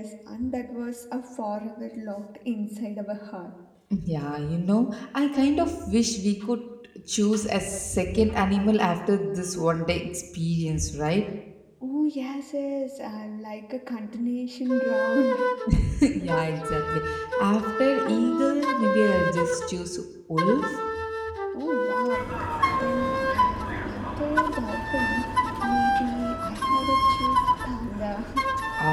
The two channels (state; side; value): identical; both; correlation 1.00